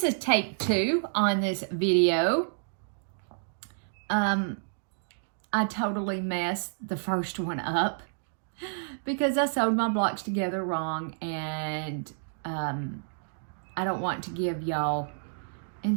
is take 2 on this video. I totally messed the first one up because I sewed my blocks together wrong, and I don't want to give y'all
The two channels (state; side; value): silent; left; digital silence